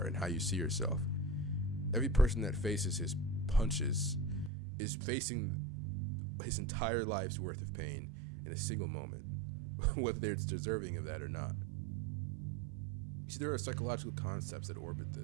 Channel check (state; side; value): drops out; left; at 4.5 s